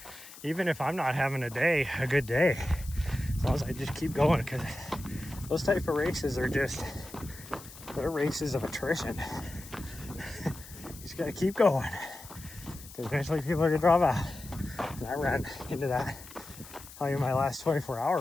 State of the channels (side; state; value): left; noise; hiss, 17 dB below the sound